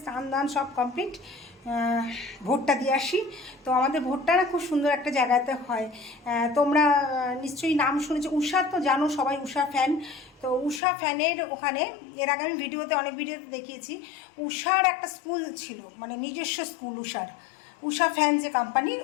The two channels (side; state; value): right; drops out; at 10.8 s